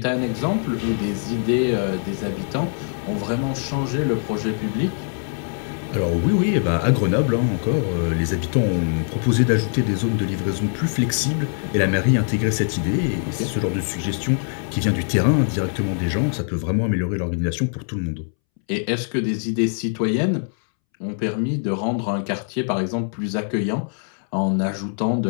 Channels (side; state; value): right; silent; 64 dB below the other